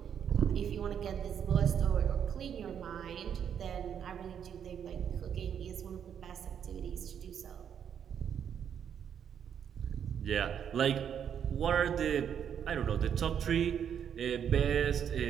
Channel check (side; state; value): left; quieter; 8.4 dB